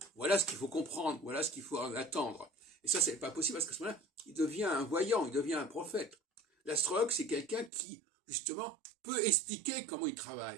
ce qu'il faut comprendre, voilà ce qu'il faut en attendre. Et ça, c'est pas possible parce qu'à ce moment-là, il devient un voyant, il devient un prophète. L'astrologue, c'est quelqu'un qui, justement, peut expliquer comment il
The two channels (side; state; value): left; drops out; at 7.7 s